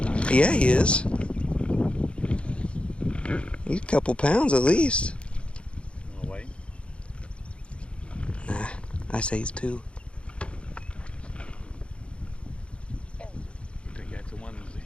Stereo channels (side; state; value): right; late; 0.058 ms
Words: Yeah, he is. He's a couple pounds at least. Wanna wait? Nah, I say he's 2. You think that's the one that's